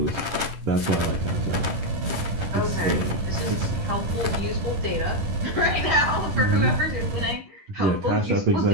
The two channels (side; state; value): left; late; 10 ms